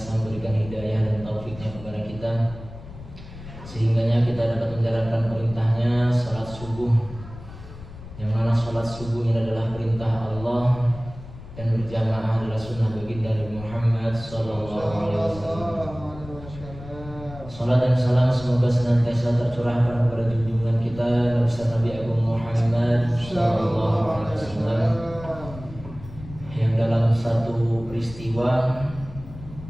memberikan hidayah dan taufiknya kepada kita, sehingganya kita dapat menjalankan perintahnya salat subuh, yang mana salat subuh ini adalah perintah Allah dan berjamaah adalah sunnah baginda Nabi Muhammad sallallahu alaihi wasallam. Salat dan salam semoga senantiasa tercurahkan kepada junjungan kita Nabi Agung Muhammad sallallahu alaihi wasallam, yang dalam satu peristiwa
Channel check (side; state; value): left; noise; rumble, 15 dB below the sound